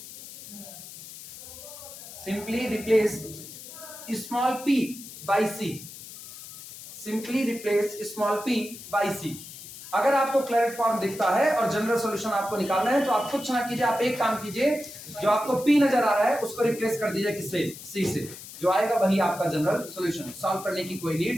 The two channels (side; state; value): left; noise; hiss, 14 dB below the sound